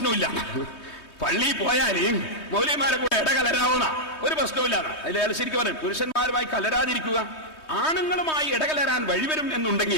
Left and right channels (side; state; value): right; late; 3.2 ms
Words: പള്ളിയിൽ പോയാല് മൗലവിമാരെ കൂടെ ഇടകലരാവുന്ന ഒരു പ്രശ്നമില്ല. അതിൽ ശരിക്കും പറയും, പുരുഷന്മാരുമായി കലരാതിരിക്കുക. ആണുങ്ങളുമായി ഇടകലരാൻ വഴിവരും